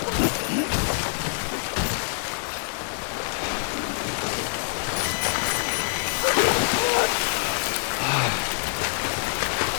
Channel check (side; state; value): right; silent; 61 dB below the other